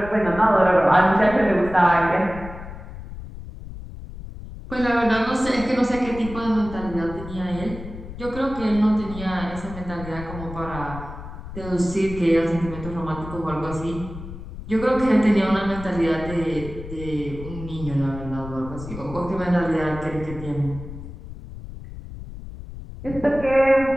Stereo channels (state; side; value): noise; left; rumble, 12 dB below the sound